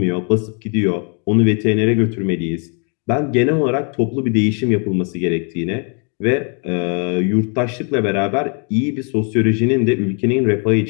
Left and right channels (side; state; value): right; quieter; 38.6 dB